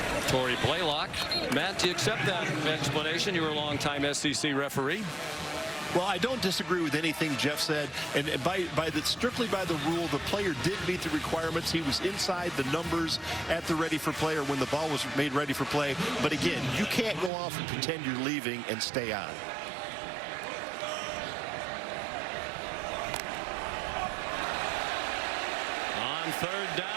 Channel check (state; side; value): drops out; left; at 17.3 s